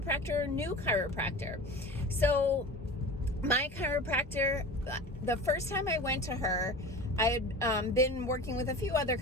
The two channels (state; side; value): normal; both; correlation 0.34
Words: or new chiropractor. So my chiropractor, the first time I went to her, I had been working with a few other